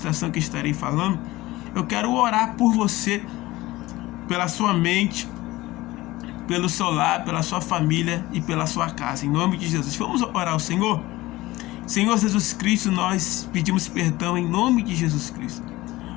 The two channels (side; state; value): right; quieter; 18.7 dB